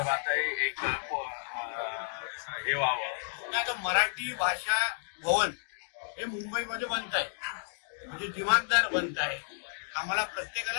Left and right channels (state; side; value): silent; right; digital silence